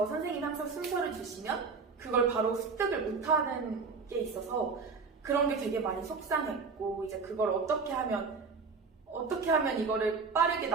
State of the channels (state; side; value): quieter; left; 4.8 dB